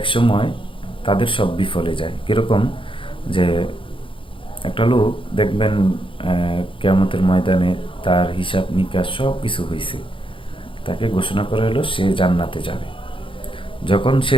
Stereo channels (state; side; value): late; right; 0.25 ms